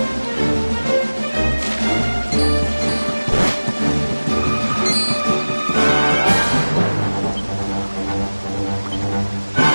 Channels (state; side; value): inverted; both; correlation -1.00